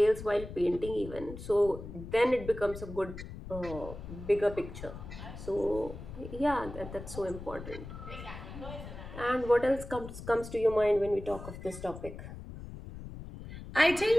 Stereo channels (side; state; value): left; noise; rumble, 11 dB below the sound